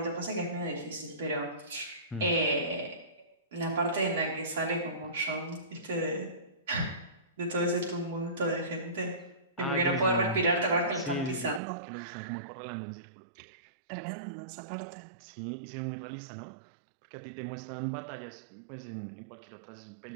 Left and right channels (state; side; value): drops out; left; at 11.6 s